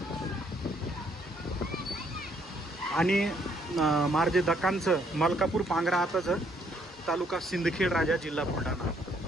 आणि मार्जे दक्कानचं मलकापूर पांगरा आताचं तालुका सिंदखेड राजा जिल्हा बुलढाणा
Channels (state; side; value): normal; both; correlation 0.68